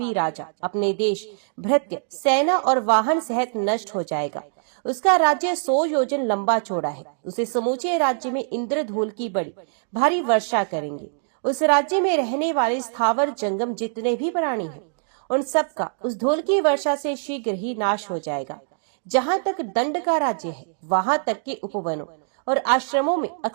राजा अपने देश, भृत्य, सेना और वाहन सहित नष्ट हो जाएगा। उसका राज्य 100 योजन लंबा चौड़ा है। उसे समूचे राज्य में इंद्रधूल की बड़ी भारी वर्षा करेंगे। उस राज्य में रहने वाले स्थावर जंगम जितने भी प्राणी हैं, उन सब का उस धूल की वर्षा से शीघ्र ही नाश हो जाएगा। जहाँ तक दंड का राज्य है, वहाँ तक के उपवनों और आश्रमों में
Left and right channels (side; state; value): left; silent; digital silence